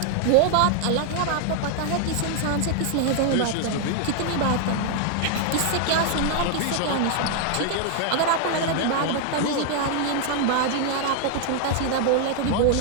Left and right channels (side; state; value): both; different; correlation 0.00